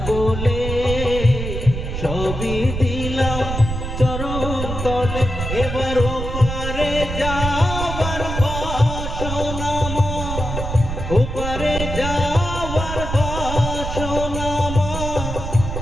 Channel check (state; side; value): noise; right; rumble, 5 dB below the sound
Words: বলে, সবই দিলাম চরণ তলে। এবার ওপারে যাবার বাসনা মা, ওপারে যাবার বাসনা